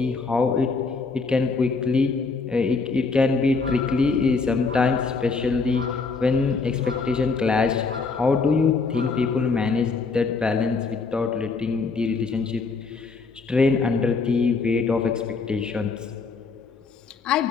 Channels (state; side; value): quieter; right; 4.4 dB